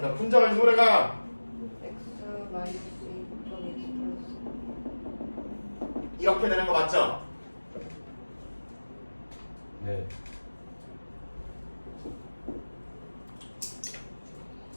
분자가 인수분해가 x 마이너스 2 곱하기 x 플러스. 이렇게 되는 거 맞죠? 네.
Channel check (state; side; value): inverted; both; correlation -1.00